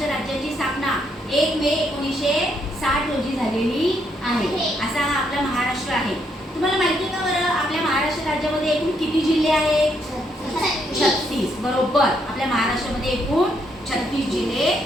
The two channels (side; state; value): both; normal; correlation 0.74